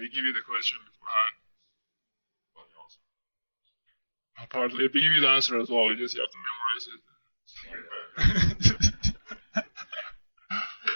give you the question beforehand. Partly, we give you the answer as well. You just have to memorize it.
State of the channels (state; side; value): inverted; both; correlation -1.00